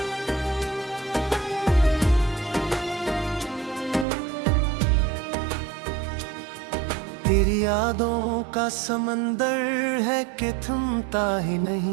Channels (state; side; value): drops out; left; at 4.0 s